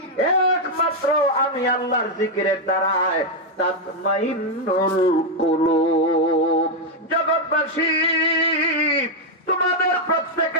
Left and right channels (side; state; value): both; normal; correlation 0.01